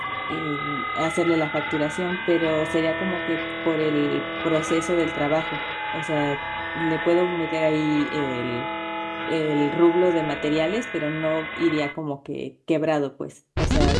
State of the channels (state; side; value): identical; both; correlation 1.00